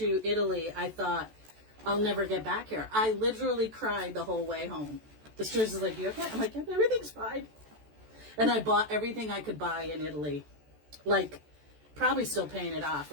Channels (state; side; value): late; left; 14 ms